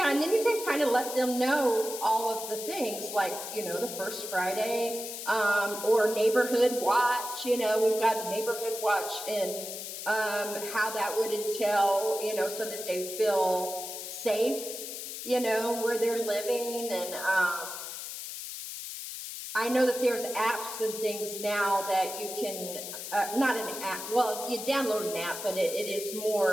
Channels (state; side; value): noise; left; hiss, 8 dB below the sound